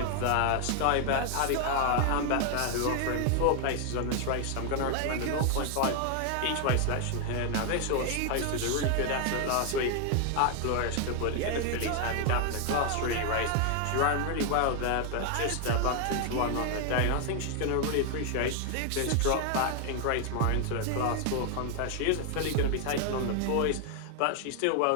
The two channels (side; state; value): both; different; correlation 0.00